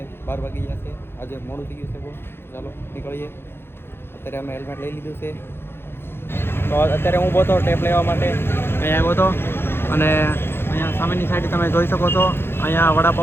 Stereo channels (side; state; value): right; late; 0.11 ms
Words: 12 વાગી ગયા છે. આજે મોડું થઈ ગયું છે બહુ. ચાલો નીકળીએ. અત્યારે અમે હેલ્મેટ લઈ લીધું છે. તો અત્યારે હું બોતો ટેપ લેવા માટે અહીંયા આવ્યો હતો અને અહીંયા સામેની સાઈડ તમે જોઈ શકો છો. અહીંયા